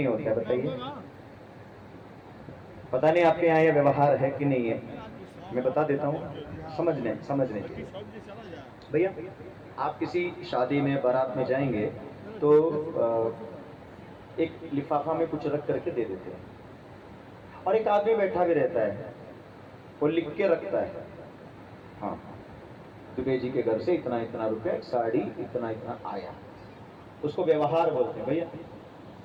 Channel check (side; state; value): both; identical; correlation 1.00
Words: होता बताइए? पता नहीं आपके यहाँ ये व्यवहार है कि नहीं है, मैं बता देता हूँ, समझने भैया। आप किसी शादी में बारात में जाएंगे तो एक लिफाफा में कुछ रख करके दे देते हैं, और एक आदमी बैठा भी रहता है, वो लिख के रखता है, हाँ दुबे जी के घर से इतना इतना रुपया, साड़ी इतना इतना आया। उसको व्यवहार बोलते हैं। भैया